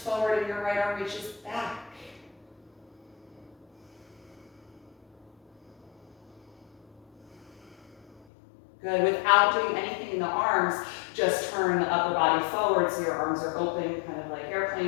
and your right arm reaches back. Good. Without doing anything in the arms, just turn the upper body forward so your arms are open, kind of like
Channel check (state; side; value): drops out; right; at 8.2 s